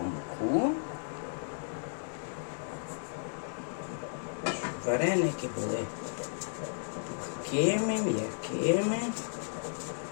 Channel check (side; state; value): right; silent; digital silence